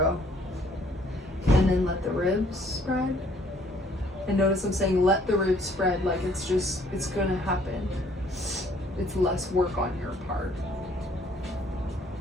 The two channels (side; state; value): both; normal; correlation 0.62